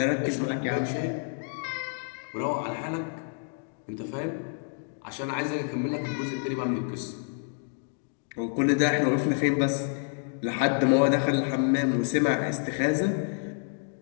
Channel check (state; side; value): silent; right; 59 dB below the other